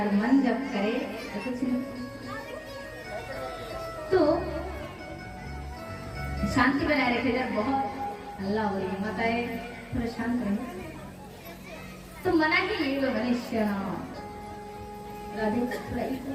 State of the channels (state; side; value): identical; both; correlation 1.00